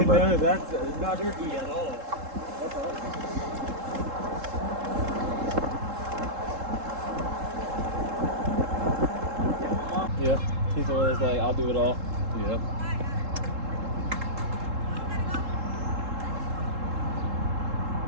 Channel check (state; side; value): late; left; 3.7 ms